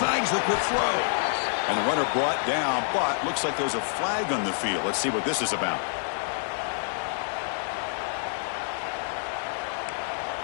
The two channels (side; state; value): right; silent; digital silence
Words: the quick throw. And the runner brought down, but looks like there's a flag on the field. Let's see what this is about.